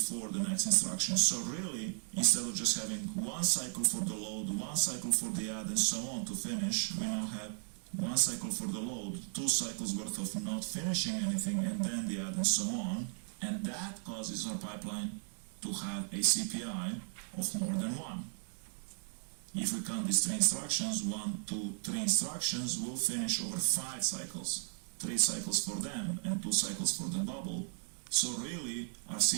the next instruction. So really, instead of just having 1 cycle for the load, 1 cycle for the add and so on to finish, we now have 1 cycle for the load, 2 cycles worth of not finishing anything, and then the add and so on, and that causes our pipeline to have a CPI of more than 1. If we count these 3 instructions, 1, 2, 3 instructions, we'll finish over 5 cycles. 3 cycles for them and 2 cycles for the bubble. So really, our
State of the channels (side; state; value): left; silent; 54 dB below the other